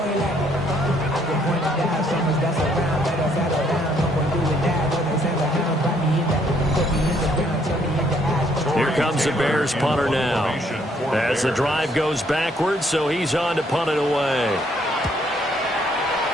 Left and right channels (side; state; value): both; normal; correlation 0.67